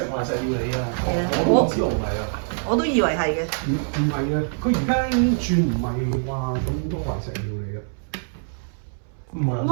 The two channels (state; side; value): silent; left; 63 dB below the other